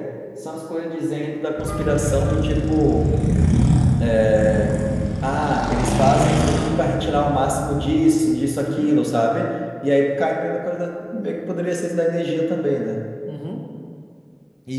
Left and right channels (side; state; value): both; identical; correlation 1.00